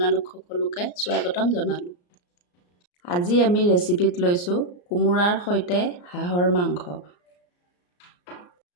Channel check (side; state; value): right; late; 34 ms